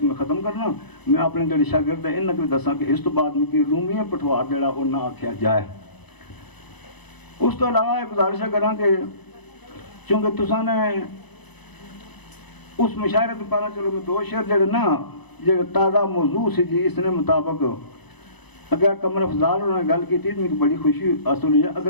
میں ختم کرنا میں اپنے جڑے شاگرد ہیں انہاں کو دساں کہ اس تو بعد میں کی رومی پٹوار جڑا وہ نہ آکھیا جائے اس تو علاوہ ایک گزارش کراں کہ چونکہ تساں نے اس مشاعرے تو پہلا چلو میں 2 شعر جڑے نا جو تازہ موضوع سے جی اس نے مطابق اگر قمر افضال انہوں نے گل کی تھی تو مجھے بڑی خوشی حاصل ہوئی ہے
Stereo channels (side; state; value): right; late; 0.99 ms